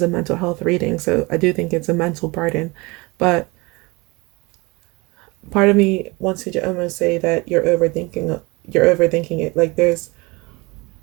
a mental health reading, so I do think it's a mental burden, but part of me wants to almost say that you're overthinking it. Like, there's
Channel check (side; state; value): left; quieter; 25.1 dB